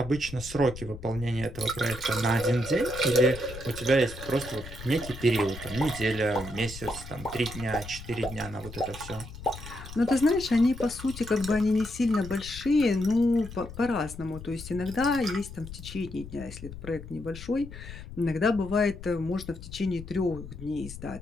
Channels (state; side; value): noise; left; rumble, 13 dB below the sound